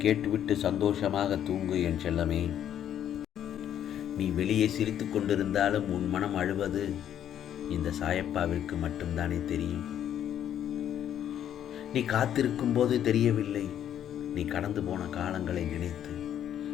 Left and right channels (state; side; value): quieter; right; 10.2 dB